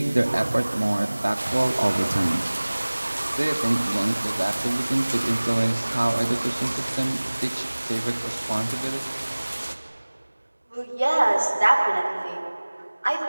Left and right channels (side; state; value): both; inverted; correlation -1.00